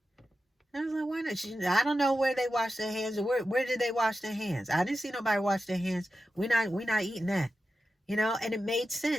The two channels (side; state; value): both; normal; correlation 0.91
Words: I was like, why not? I don't know where they wash their hands. Or where did they wash their hands? I didn't see nobody wash their hands. We're not eating that. And it made